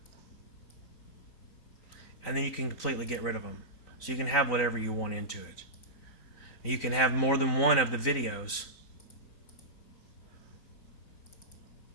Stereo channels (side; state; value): right; late; 3.9 ms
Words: And then you can completely get rid of them. So you can have whatever you want into it. You can have more than one of the videos.